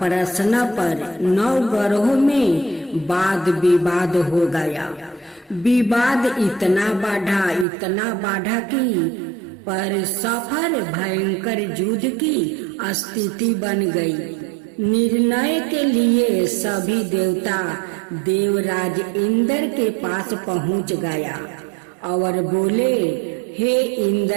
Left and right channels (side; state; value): left; drops out; at 7.7 s